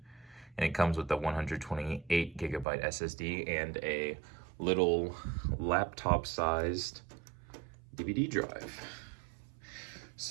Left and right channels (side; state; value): left; drops out; at 2.7 s